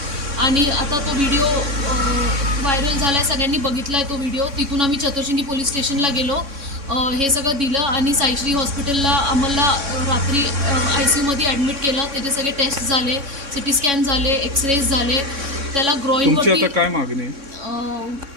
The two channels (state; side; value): late; left; 3.6 ms